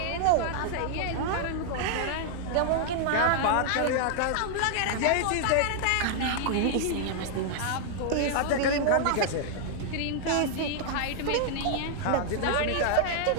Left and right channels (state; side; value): different; both; correlation -0.01